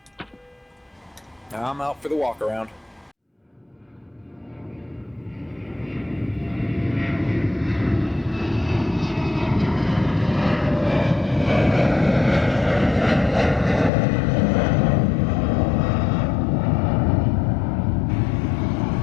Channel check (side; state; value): right; drops out; at 13.9 s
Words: I'm out for the walkaround.